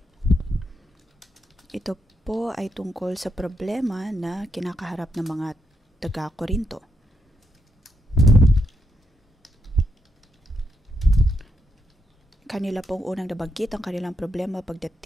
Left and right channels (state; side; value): normal; both; correlation 0.81